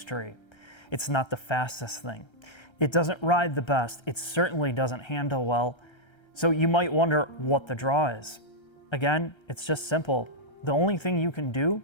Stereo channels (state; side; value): late; right; 1.3 ms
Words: It's not the fastest thing. It doesn't ride the best. It certainly doesn't handle well. So you might wonder what the draw is. Again, it's just simple. The only thing you can do